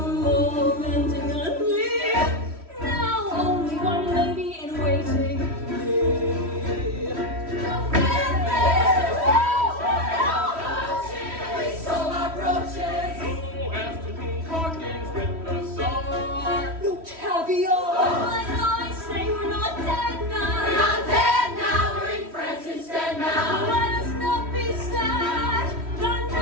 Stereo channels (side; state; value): left; late; 3.1 ms